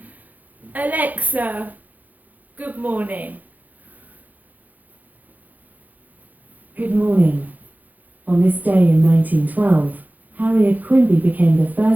Alexa, good morning. Good morning. On this day in 1912, Harriet Quimby became the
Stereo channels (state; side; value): late; left; 0.082 ms